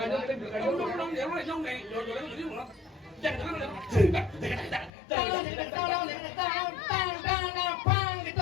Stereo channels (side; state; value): right; drops out; at 4.9 s